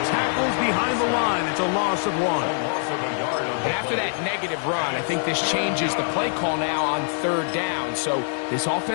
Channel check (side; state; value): right; silent; digital silence